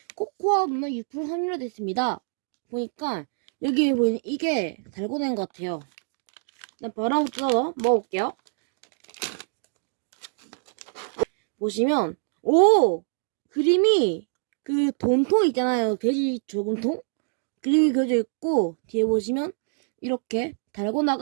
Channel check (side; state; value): left; silent; digital silence